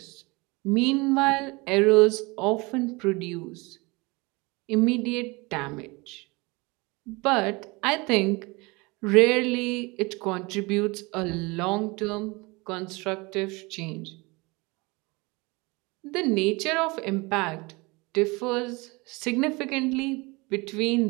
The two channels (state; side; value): quieter; left; 25.4 dB